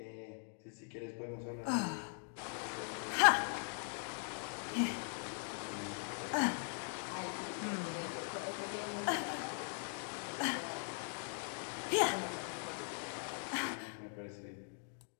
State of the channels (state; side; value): silent; right; 50 dB below the other